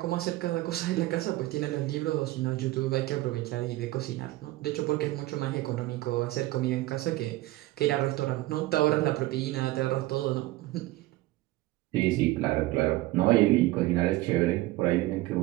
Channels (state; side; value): quieter; left; 17.9 dB